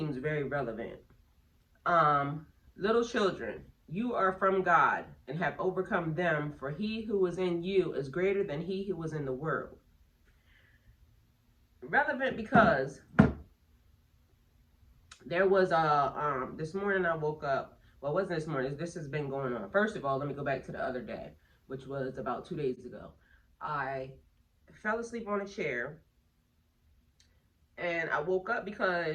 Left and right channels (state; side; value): identical; both; correlation 1.00